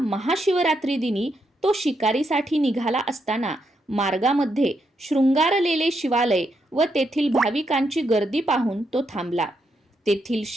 दिनी तो शिकारीसाठी निघाला असताना मार्गामध्ये शृंगारलेले शिवालय व तेथील भाविकांची गर्दी पाहून तो थांबला. तेथील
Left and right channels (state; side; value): normal; both; correlation 0.80